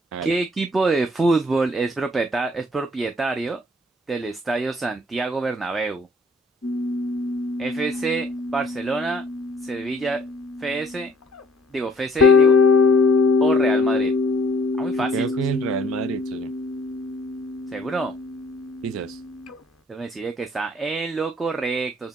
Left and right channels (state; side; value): normal; both; correlation 0.59